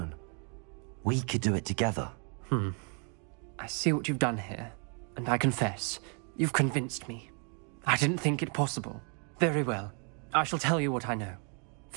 We could do it together. I see what you've done here, and I confess, you've convinced me. I didn't think it possible. Very well. I shall tell you what I know.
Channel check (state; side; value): quieter; left; 39.4 dB